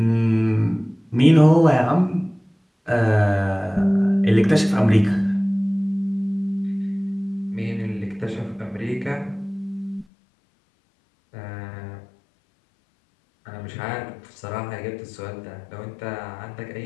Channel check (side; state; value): right; drops out; at 10.1 s